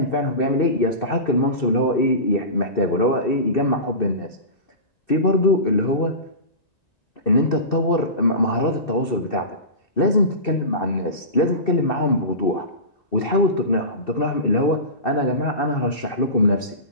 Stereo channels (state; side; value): late; right; 2.7 ms